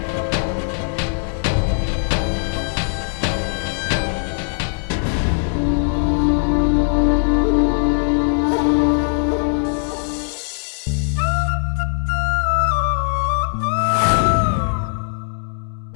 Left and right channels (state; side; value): silent; right; digital silence